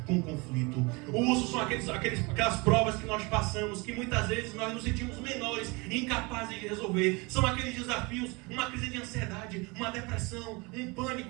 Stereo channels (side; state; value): left; quieter; 27.1 dB